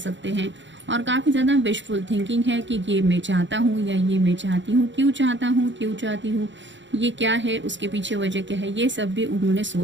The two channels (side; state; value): left; late; 0.54 ms